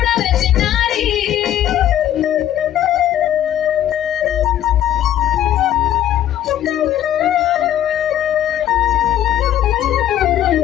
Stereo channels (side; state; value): right; quieter; 11.6 dB